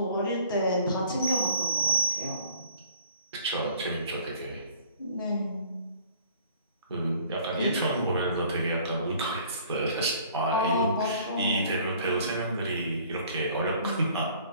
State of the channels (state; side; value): inverted; both; correlation -0.55